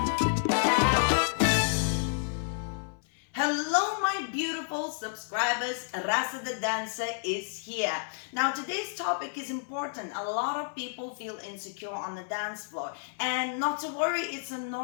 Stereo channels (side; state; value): right; silent; 58 dB below the other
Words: Hello, my beautiful subscribers. Rasa the dancer is here. Now, today's topic is important. A lot of people feel insecure on the dance floor. And not to worry, it's a